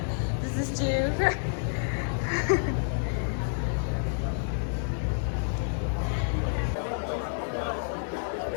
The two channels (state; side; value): silent; right; digital silence